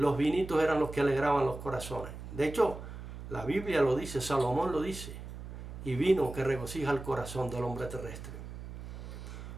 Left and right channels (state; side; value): noise; right; hum, 11 dB below the sound